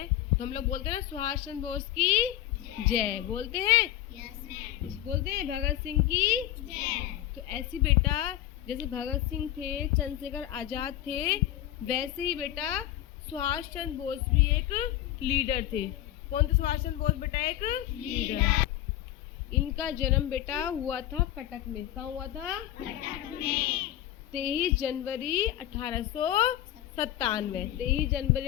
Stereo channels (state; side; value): quieter; right; 13.1 dB